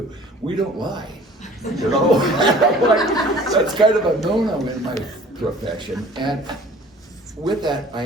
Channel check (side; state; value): both; normal; correlation 0.49